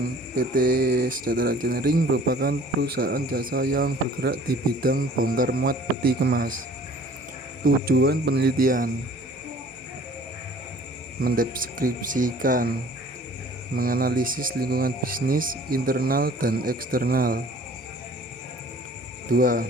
PT Sejahtera Engineering merupakan perusahaan jasa yang bergerak di bidang bongkar muat peti kemas. Tujuan penelitian: mendeskripsikan, menganalisis lingkungan bisnis internal dan eksternal. 2.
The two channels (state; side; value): normal; both; correlation 0.51